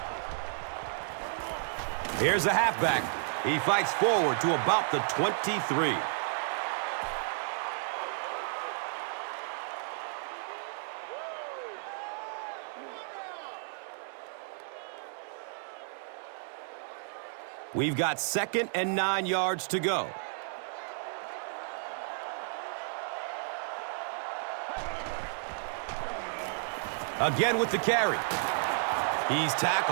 Here's the halfback. He fights forward to about the 23. We've got 2nd and 9 yards to go. Again with the carry. He's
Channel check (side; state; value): left; silent; digital silence